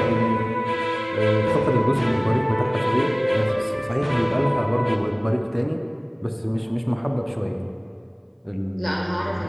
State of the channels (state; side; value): identical; both; correlation 1.00